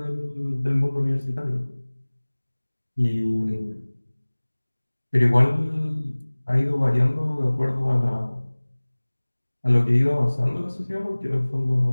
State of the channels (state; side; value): inverted; both; correlation -1.00